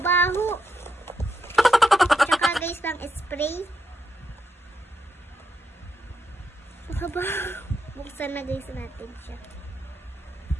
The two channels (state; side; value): normal; both; correlation 0.82